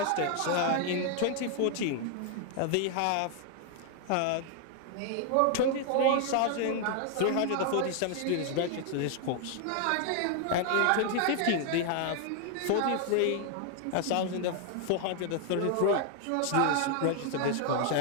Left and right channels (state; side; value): different; both; correlation 0.00